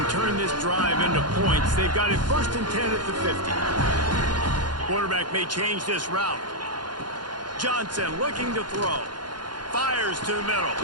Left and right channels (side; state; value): left; late; 0.71 ms